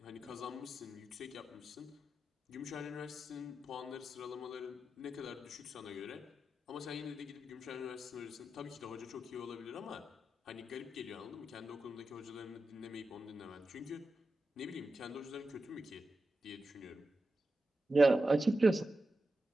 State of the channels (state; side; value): normal; both; correlation 0.91